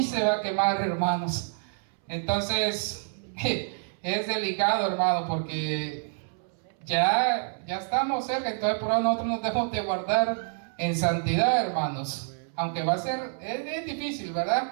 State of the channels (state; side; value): silent; left; 60 dB below the other